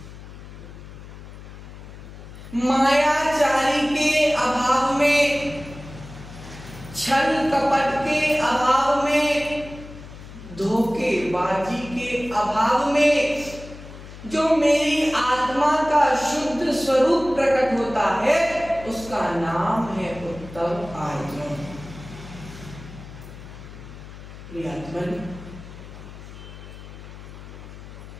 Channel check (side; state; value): left; noise; hum, 15 dB below the sound